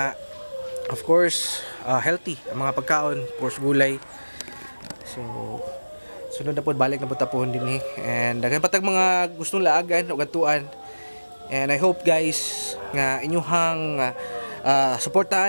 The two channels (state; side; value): inverted; both; correlation -1.00